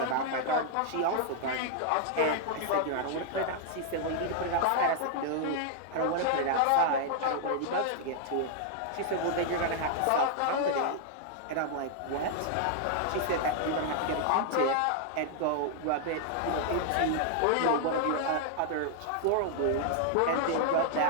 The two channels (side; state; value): both; different; correlation -0.01